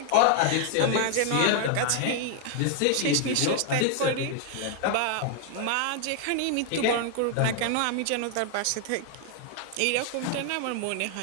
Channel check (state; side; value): different; both; correlation 0.00